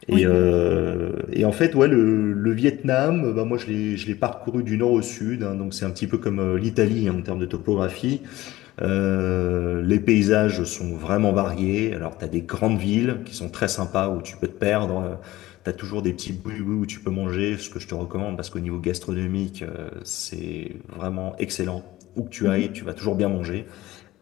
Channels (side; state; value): right; quieter; 17.3 dB